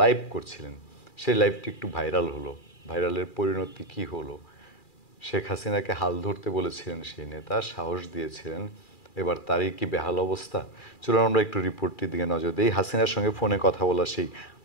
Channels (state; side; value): late; right; 2.4 ms